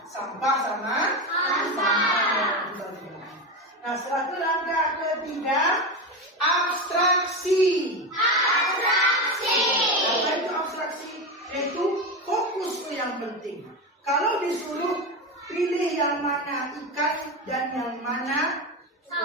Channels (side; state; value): both; normal; correlation 0.17